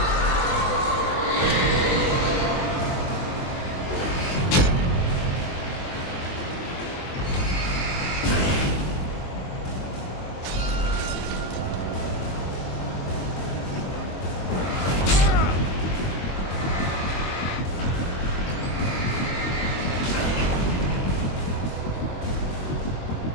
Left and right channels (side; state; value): right; late; 22 ms